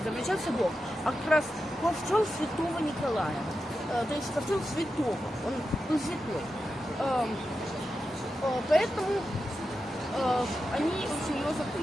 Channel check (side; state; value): both; normal; correlation 0.90